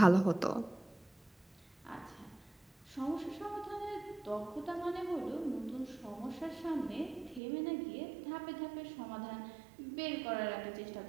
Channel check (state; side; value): drops out; left; at 7.4 s